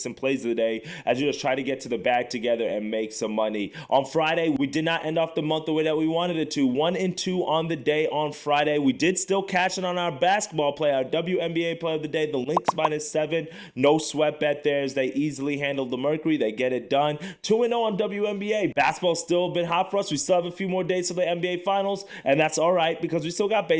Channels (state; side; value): identical; both; correlation 1.00